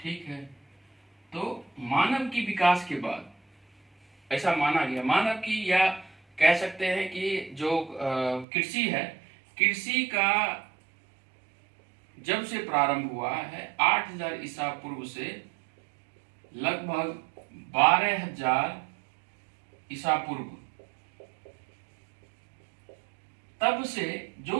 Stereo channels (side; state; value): left; drops out; at 8.5 s